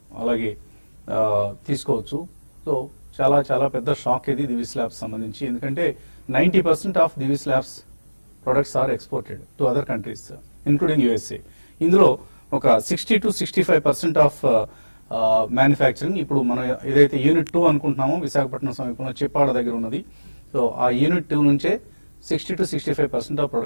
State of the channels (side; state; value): both; inverted; correlation -1.00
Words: అలాగే తీసుకోవచ్చు. సో చాలా చాలా పెద్ద షాక్ ఇది దివీస్ ల్యాబ్స్ సంబంధించి. ఎందుకంటే 90% of Divi's labs products are exported to other countries including USA. ఇందులో ఒక 60 to 65% ఆఫ్ మ్యానుఫ్యాక్చరింగ్ ఇప్పుడు మనం ఏదైతే యూనిట్ 2 అనుకుంటున్నామో విశాఖపట్నం సమీపంలో చిప్పాడ దగ్గర ఉన్నది. సో ఆ యూనిట్ 2 నుంచే 60 to 65% ఆఫ్